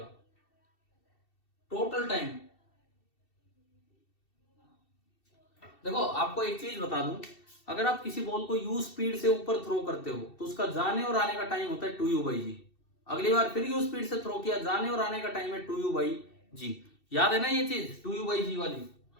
Total time. देखो आपको एक चीज बता दूं, अगर आप किसी बॉल को u स्पीड से ऊपर थ्रो करते हो तो उसका जाने और आने का टाइम होता है 2u/g। अगली बार फिर u स्पीड से थ्रो किया, जाने और आने का टाइम है 2u/g। याद है ना ये चीज 2u/g वाली?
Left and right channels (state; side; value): late; right; 2.7 ms